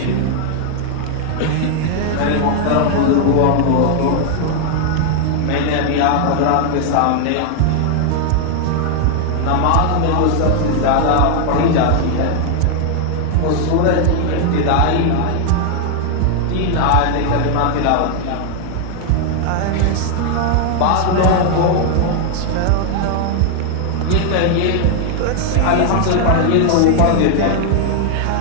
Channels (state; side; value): different; both; correlation 0.00